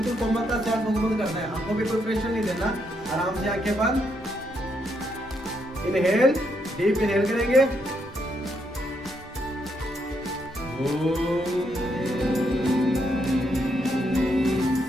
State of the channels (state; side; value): normal; both; correlation 0.77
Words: कोमलता से आंखों को बंद करना है। आंखों पे कोई प्रेशर नहीं देना, आराम से आंखें बंद, इनहेल, डीप इनहेल करेंगे,